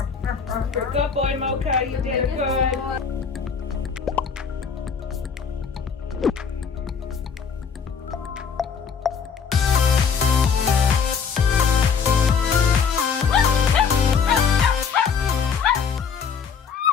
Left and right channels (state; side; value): quieter; right; 6.2 dB